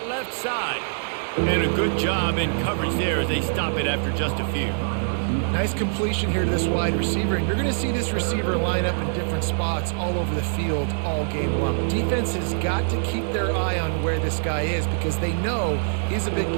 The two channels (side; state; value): left; silent; digital silence